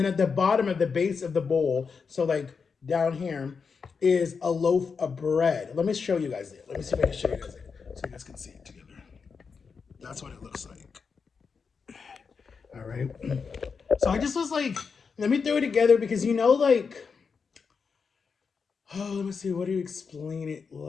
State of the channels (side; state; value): right; quieter; 5.5 dB